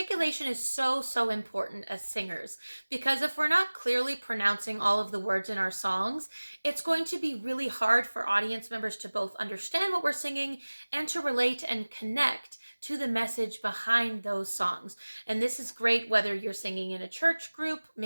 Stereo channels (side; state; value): both; inverted; correlation -1.00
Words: is so important as singers because if we're not clearly pronouncing all of the words in our songs, it's going to be really hard for audience members to both understand what we're singing and to relate and connect to the message behind those songs. And this is great whether you're singing in a church group,